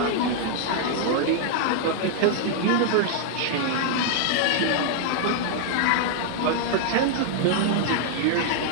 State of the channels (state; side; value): different; both; correlation -0.01